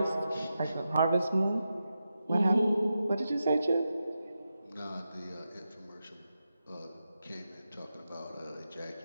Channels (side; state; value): both; inverted; correlation -0.89